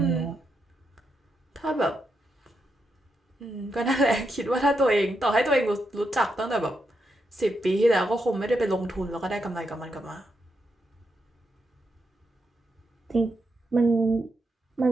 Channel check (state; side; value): normal; both; correlation 0.83